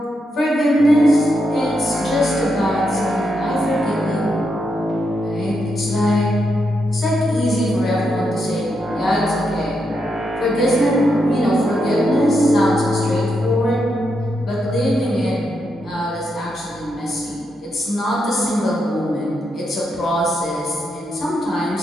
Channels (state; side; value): normal; both; correlation 0.82